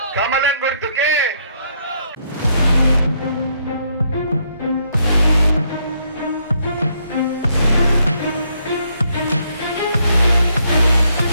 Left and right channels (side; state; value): both; inverted; correlation -0.72